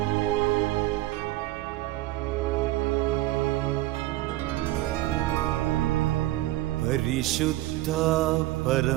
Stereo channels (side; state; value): left; quieter; 16.6 dB